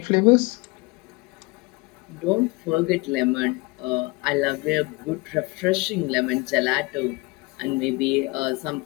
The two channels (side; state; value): right; quieter; 25.1 dB